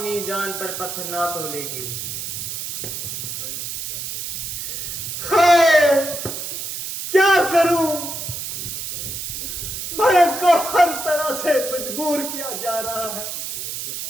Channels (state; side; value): noise; right; hiss, 5 dB below the sound